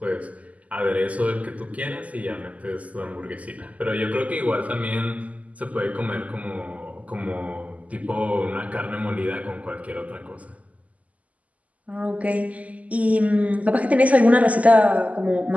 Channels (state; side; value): late; left; 0.072 ms